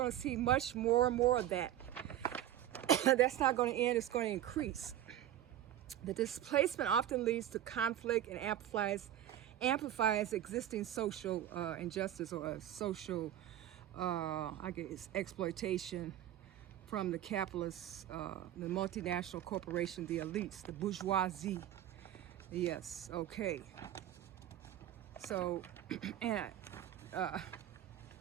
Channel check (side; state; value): left; quieter; 12.1 dB